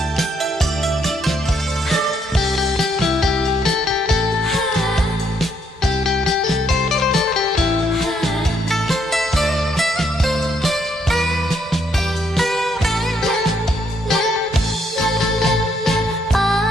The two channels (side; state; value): both; normal; correlation 0.73